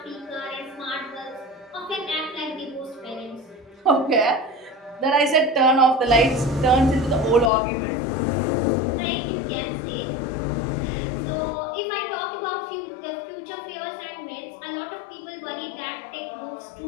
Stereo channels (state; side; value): drops out; right; at 7.5 s